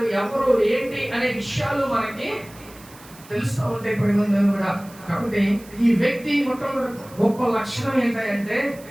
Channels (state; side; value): noise; right; hiss, 22 dB below the sound